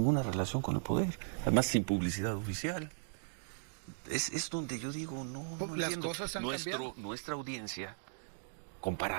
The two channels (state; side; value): silent; left; digital silence